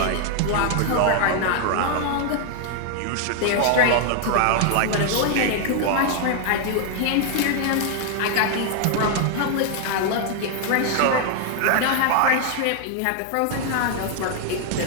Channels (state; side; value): different; both; correlation 0.00